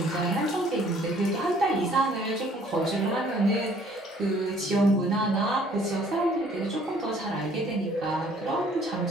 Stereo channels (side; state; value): both; normal; correlation 0.58